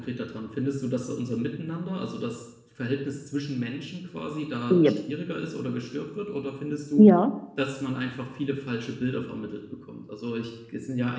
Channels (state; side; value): identical; both; correlation 1.00